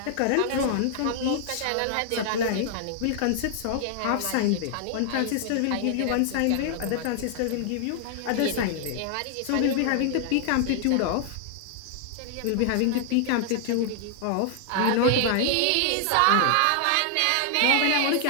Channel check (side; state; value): both; different; correlation 0.00